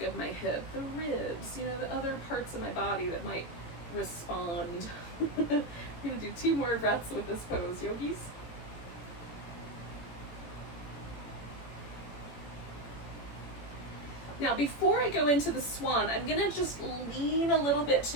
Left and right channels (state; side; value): late; right; 18 ms